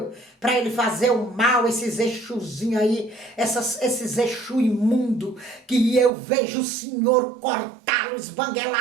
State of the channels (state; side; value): drops out; left; at 6.1 s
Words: para ele fazer o mal, esses exuzinhos aí, esses exu imundo, que eu vejo o Senhor cortá-lo,